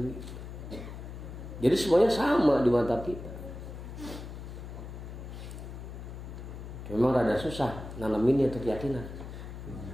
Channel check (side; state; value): left; noise; hum, 10 dB below the sound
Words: Jadi semuanya sama di mata kita. Memang rada susah nanamin itu keyakinan,